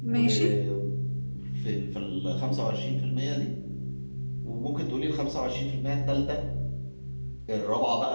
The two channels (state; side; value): inverted; both; correlation -1.00